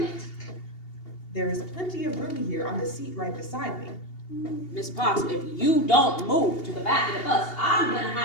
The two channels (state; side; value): late; right; 2.8 ms